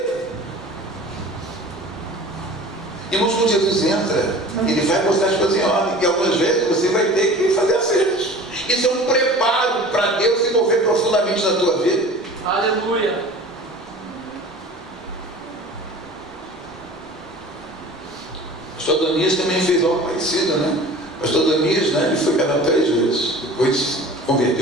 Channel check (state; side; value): normal; both; correlation 0.42